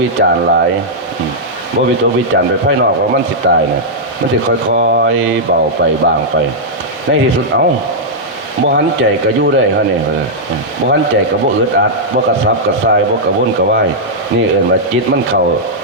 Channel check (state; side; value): normal; both; correlation -0.08